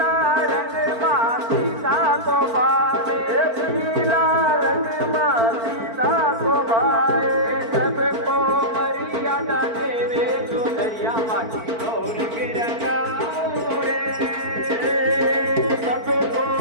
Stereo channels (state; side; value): late; left; 4.5 ms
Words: रंग माँ सीता को भावे पीला रंग माँ सीता को भावे सबको मर्यादा देवे चुनरिया माटी नो रंग रंगाओ रे सबको